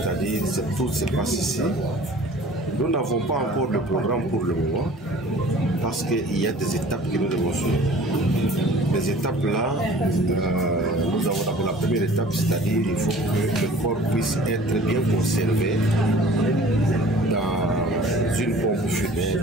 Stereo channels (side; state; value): both; normal; correlation 0.47